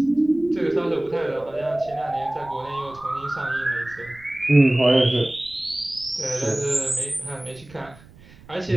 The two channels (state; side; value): noise; right; rumble, 23 dB below the sound